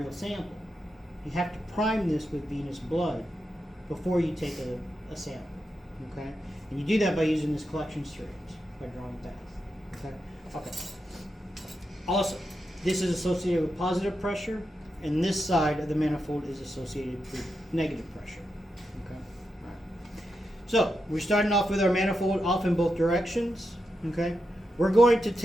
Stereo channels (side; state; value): both; normal; correlation 0.87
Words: sample. You have to prime this with venous blood before you take a sample. Okay, and you do that by using this collection syringe, by drawing back. Okay. Okay. Also, this is associated with positive pressure, and this side of the manifold is associated with negative pressure. Okay. All right. So we're starting off with our manifold off in both directions. Okay. We're going to